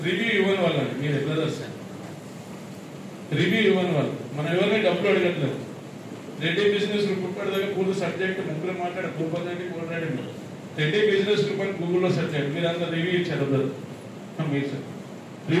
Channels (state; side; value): identical; both; correlation 1.00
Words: రివ్యూ ఇవ్వని వాళ్ళని మీరు ఎట్లా చేస్తారు? రివ్యూ ఇవ్వని వాళ్ళు మనం ఎవరిని డబ్బులు అడగట్లేదు. రెడ్డి బిజినెస్ గ్రూప్ ఇప్పటిదాకా పూర్తి సబ్జెక్ట్ ముగ్గురు మాట్లాడే మాట్లాడింది. రెడ్డి బిజినెస్ గ్రూప్ అని గూగుల్లో సెర్చ్ చేయండి, మీరు అంతా రివ్యూ ఇచ్చారు మీరు సార్.